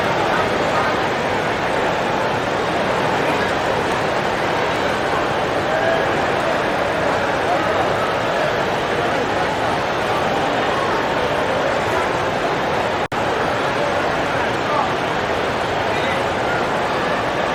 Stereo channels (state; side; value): identical; both; correlation 1.00